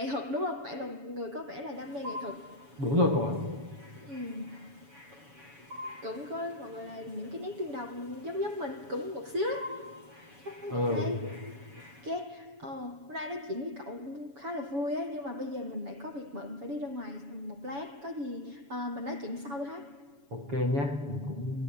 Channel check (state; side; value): late; left; 7.1 ms